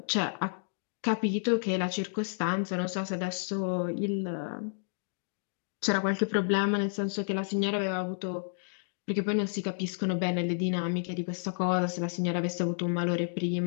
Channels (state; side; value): silent; right; digital silence